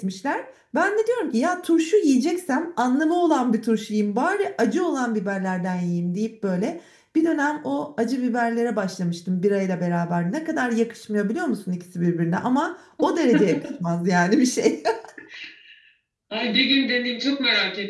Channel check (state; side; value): identical; both; correlation 1.00